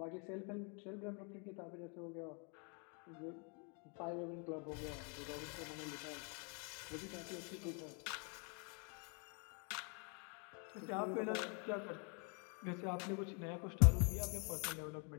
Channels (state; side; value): quieter; right; 37.1 dB